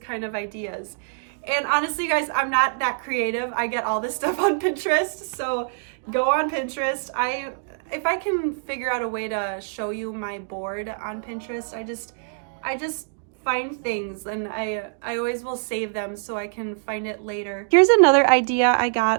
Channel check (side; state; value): left; silent; digital silence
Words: of ideas. And honestly, guys, I'm not that creative. I get all this stuff on Pinterest, so go on Pinterest. If I can figure out a way to show you my board on Pinterest, I just find things, and I always will save them so I can find it later. Here's another idea I